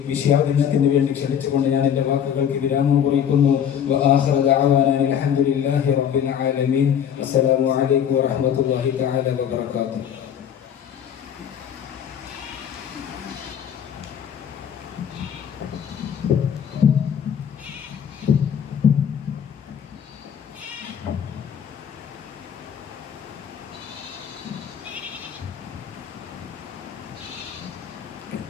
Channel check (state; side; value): quieter; right; 8.7 dB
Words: വിഷയാവതരണത്തിന് വേണ്ടി ക്ഷണിച്ചുകൊണ്ട് ഞാൻ എൻ്റെ വാക്കുകൾക്ക് വിരാമം കുറിക്കുന്നു. അൽഹംദുലില്ലാഹി റബ്ബിൽ ആലമീൻ. അസ്സലാമു അലൈക്കും വറഹ്മത്തുള്ളാഹി തആല വബറകാതുഹു.